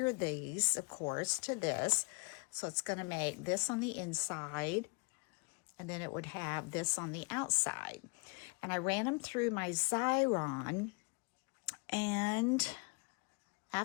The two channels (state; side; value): quieter; right; 32.3 dB